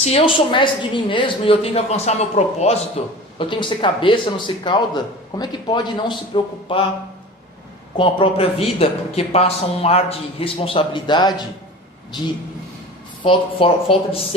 eu sou mestre de mim mesmo e eu tenho que alcançar meu propósito, eu tenho que ser cabeça, não ser cauda, como é que pode não se preocupar com a própria vida? Porque passa um ar de responsabilidade, de falta de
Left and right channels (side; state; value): both; normal; correlation 0.36